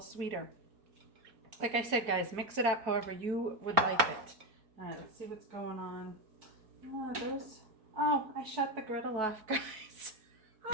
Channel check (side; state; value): left; late; 4.6 ms